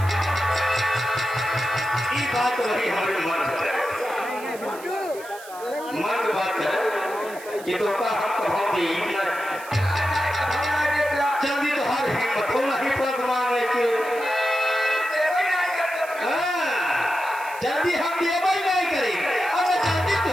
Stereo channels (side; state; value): right; noise; hiss, 18 dB below the sound